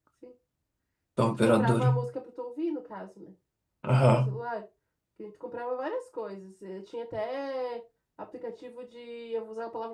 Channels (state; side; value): identical; both; correlation 1.00